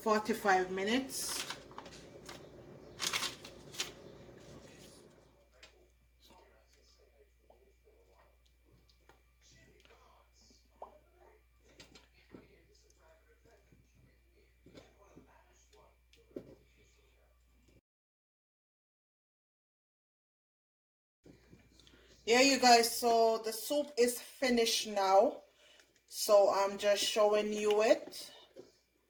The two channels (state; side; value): identical; both; correlation 1.00